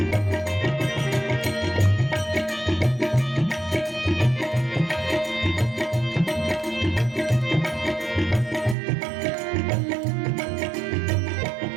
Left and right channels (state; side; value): drops out; left; at 8.8 s